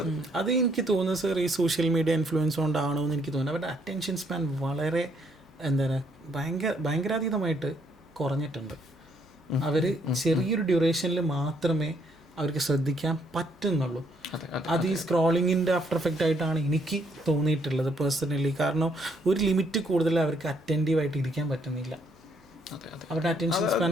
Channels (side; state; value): both; normal; correlation 0.70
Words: അത് എനിക്ക് തോന്നുന്നു സർ ഈ സോഷ്യൽ മീഡിയ ഇൻഫ്ലുവൻസ് കൊണ്ടാണോ എന്ന് എനിക്ക് തോന്നുന്നു. അവരുടെ അറ്റൻഷൻ സ്പാൻ വളരെ ഭയങ്കരാതീതമായിട്ട് കുറഞ്ഞിട്ടുണ്ട്. അവർ ചെറിയൊരു ഡ്യൂറേഷനിൽ മാത്രമേ അവർക്ക് ശ്രദ്ധിക്കാൻ പറ്റുന്നുള്ളൂ. അത് ഈ സ്ക്രോളിങ്ങിൻ്റെ ആഫ്റ്റർ എഫക്റ്റ് ആയിട്ടാണ് എനിക്ക് തോന്നിയിട്ടുള്ളത് പേഴ്സണലി. കാരണം ഒരു ലിമിറ്റ് കൂടുതൽ അവർക്ക് അറ്റൻറ്റീവായിട്ട് ഇരിക്കാൻ പറ്റുന്നില്ല. അവരുടെ അറ്റൻഷൻ സ്പാൻ